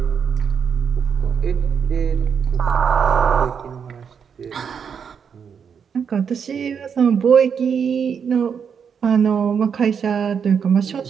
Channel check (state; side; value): quieter; left; 6.9 dB